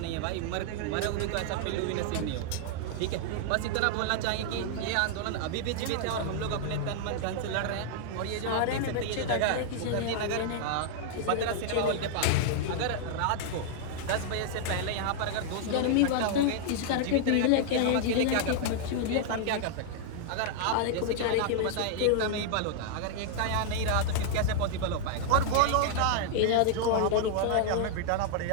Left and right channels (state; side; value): different; both; correlation -0.01